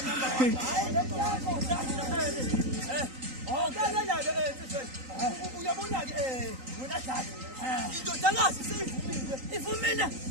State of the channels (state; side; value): late; left; 3.8 ms